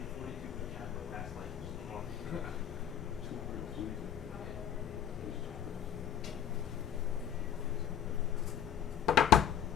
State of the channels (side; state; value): right; quieter; 9.4 dB